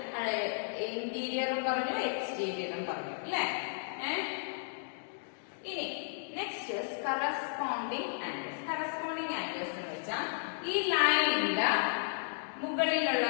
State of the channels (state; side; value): silent; right; digital silence